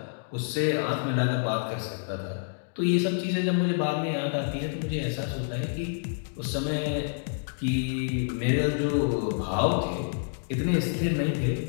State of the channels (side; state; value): right; silent; digital silence